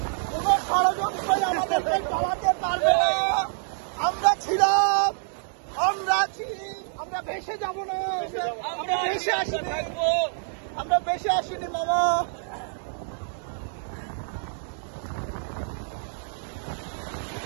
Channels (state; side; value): silent; left; 60 dB below the other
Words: কোনো ষড়যন্ত্রই আমাদেরকে চালাতে পারবে না। আমরা ছিলাম, আমরা আছি, আমরা ভেসে যাবো না, আমরা ভেসে আসিনি, আমরা ভেসে আসিনি মামা।